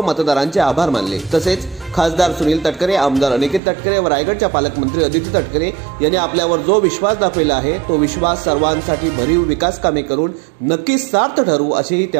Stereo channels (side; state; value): left; drops out; at 3.6 s